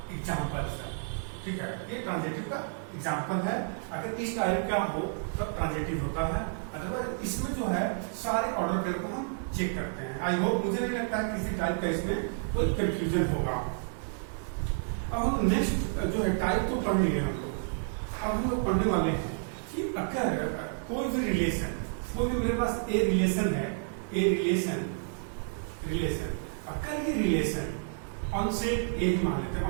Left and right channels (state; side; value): silent; left; 57 dB below the other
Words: एग्जाम्पल है, ठीक है, ये ट्रांजिटिव का एग्जाम्पल है। अगर इस टाइप का हो तब ट्रांजिटिव होता है, अदरवाइज इसमें जो है सारे ऑर्डर पेयर को हम चेक करते हैं। आई होप, मुझे नहीं लगता है किसी टाइप का इसमें कोई कंफ्यूजन होगा। अब हम नेक्स्ट जो है टाइप तो पढ़ लिए हम लोग, अब हम लोग पढ़ने वाले हैं कि अगर कोई भी रिलेशन, कोई भी मेरे पास ए रिलेशन है, ए रिलेशन, अगर ये रिलेशन ऑन सेट ए मान लेते हैं,